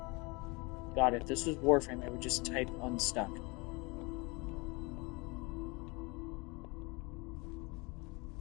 God, if this was Warframe, I would just type unstuck.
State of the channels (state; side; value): quieter; right; 27.4 dB